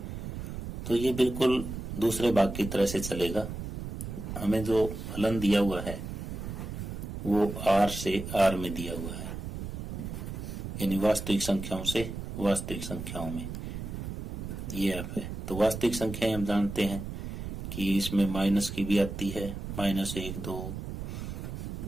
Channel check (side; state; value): right; noise; rumble, 7 dB below the sound